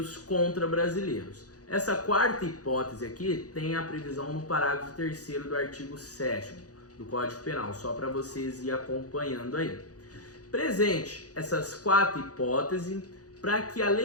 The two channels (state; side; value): late; right; 0.67 ms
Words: contra brasileiros. Essa quarta hipótese aqui tem a previsão no parágrafo 3º do artigo 7º do Código Penal, só para vocês ir acompanhando aí. Presente essas quatro hipóteses, para que a